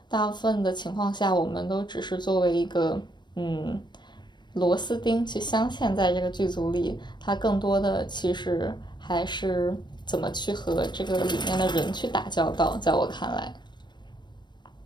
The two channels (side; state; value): right; late; 0.22 ms